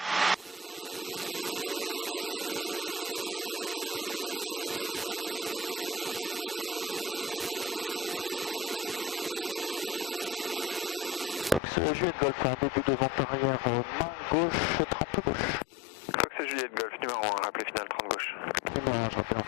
Fox Juliette Golf en début de vente arrière, main gauche, 30 gauche. Fox Juliette Golf, numéro 1, rappelez finale 30 gauche. Numéro 1, je rappelle en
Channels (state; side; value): drops out; right; at 11.6 s